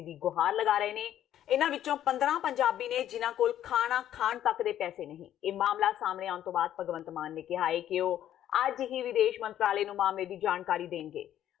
ਦੀ ਗੁਹਾਰ ਲਗਾ ਰਹੇ ਨੇ। ਇਹਨਾਂ ਵਿੱਚੋਂ 15 ਪੰਜਾਬੀ ਨੇ ਜਿਨ੍ਹਾਂ ਕੋਲ ਖਾਣਾ ਖਾਣ ਤੱਕ ਦੇ ਪੈਸੇ ਨਹੀਂ। ਇਹ ਮਾਮਲਾ ਸਾਹਮਣੇ ਆਉਣ ਤੋਂ ਬਾਅਦ ਭਗਵੰਤ ਮਾਨ ਨੇ ਕਿਹਾ ਹੈ ਕਿ ਉਹ ਅੱਜ ਹੀ ਵਿਦੇਸ਼ ਮੰਤਰਾਲੇ ਨੂੰ ਮਾਮਲੇ ਦੀ ਜਾਣਕਾਰੀ ਦੇਣਗੇ।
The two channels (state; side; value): quieter; right; 11.5 dB